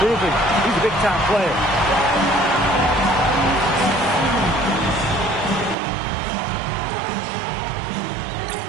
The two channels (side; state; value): left; drops out; at 5.8 s